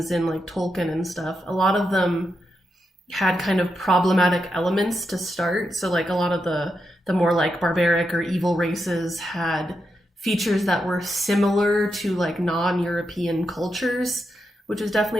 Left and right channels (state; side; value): normal; both; correlation 0.85